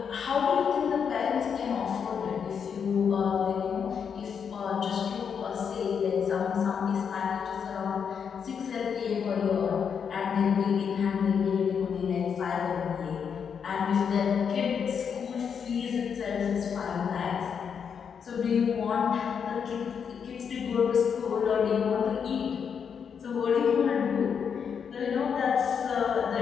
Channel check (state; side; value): quieter; right; 7.0 dB